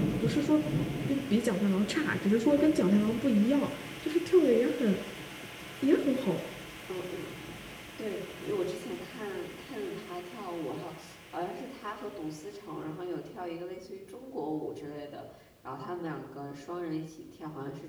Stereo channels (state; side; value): identical; both; correlation 1.00